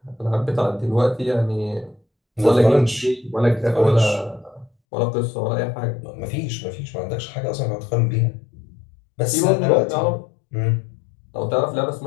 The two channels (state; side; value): drops out; right; at 4.7 s